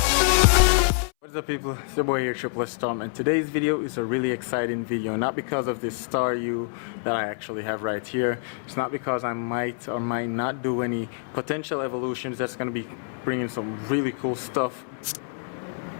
What's up, people? It's your boy here, Triple S Tom, and today's video is a really exciting video. Not because of this star U that I actually have right here. It's not because I might or might not do any potential evolutions that's going to be bringing some really cool stuff,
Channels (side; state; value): right; silent; 61 dB below the other